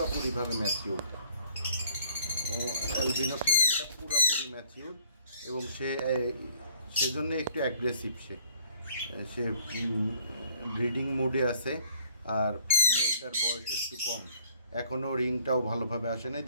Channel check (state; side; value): inverted; both; correlation -0.58